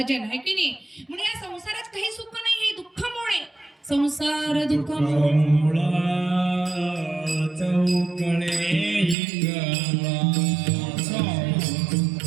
आहे की नाही? म्हणजे या संसारात काही सुख नाही, हे दुःखामुळे. संसार दुःख मुळा चौकळे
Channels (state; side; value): drops out; left; at 9.2 s